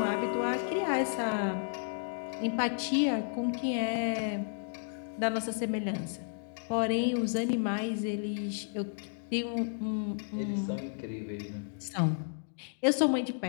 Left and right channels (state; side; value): silent; right; digital silence